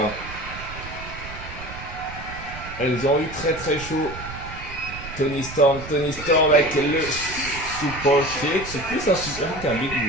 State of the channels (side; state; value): right; noise; rumble, 12 dB below the sound